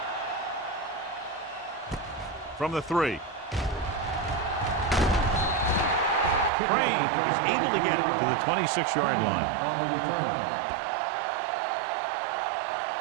From the 3. Crane is able to get it to the 26-yard line.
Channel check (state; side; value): drops out; left; at 6.5 s